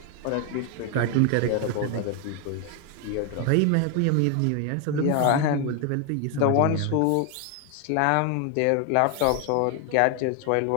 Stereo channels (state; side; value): different; both; correlation 0.01